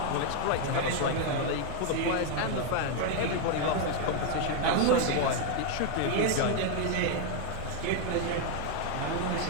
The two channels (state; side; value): different; both; correlation 0.00